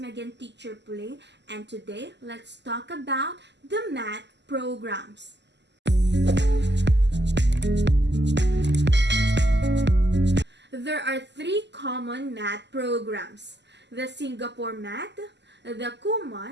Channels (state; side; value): late; left; 0.51 ms